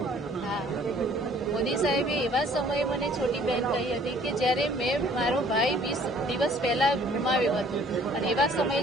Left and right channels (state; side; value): normal; both; correlation 0.57